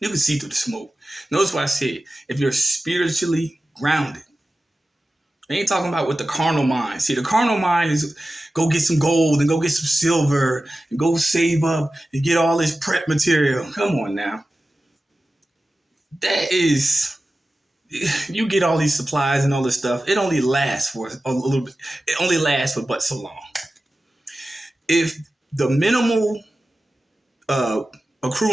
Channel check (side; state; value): both; normal; correlation 0.95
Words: can see through the smoke. Notice what I said. If you're spiritually grounded, I ain't talking about with the carnal mind. See, the carnal mind is go get some gold and go get some silver and go save up and get all this prep material. Come on now. That is, you get all these supplies and all this stuff. It only lasts for a little bit. It only lasts for but so long. If the minimal